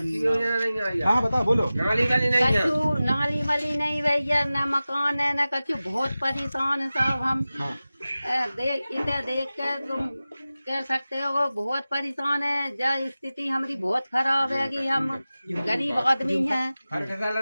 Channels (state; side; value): inverted; both; correlation -0.96